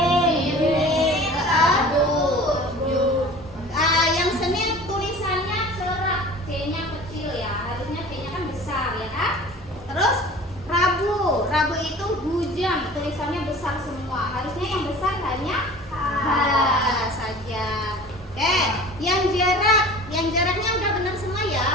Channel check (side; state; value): both; normal; correlation 0.42